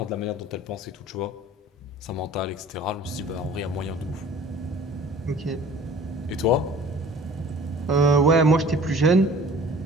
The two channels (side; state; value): both; normal; correlation 0.47